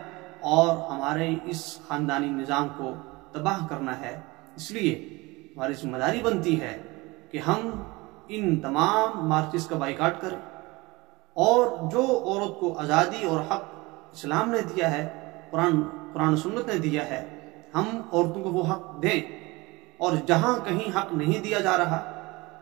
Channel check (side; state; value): left; quieter; 23.0 dB